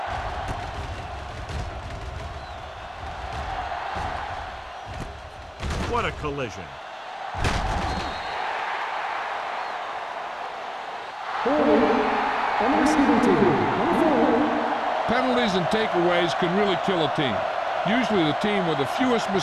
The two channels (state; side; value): identical; both; correlation 1.00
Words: What a collision. Penalties and takeaways can really kill a team. Usually the team with the fewest